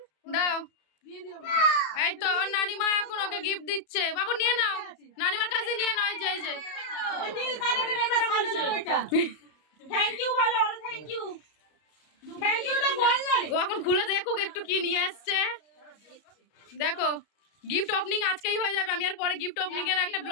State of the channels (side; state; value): right; late; 33 ms